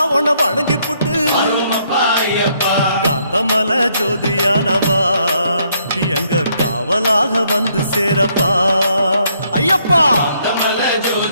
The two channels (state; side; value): inverted; both; correlation -0.71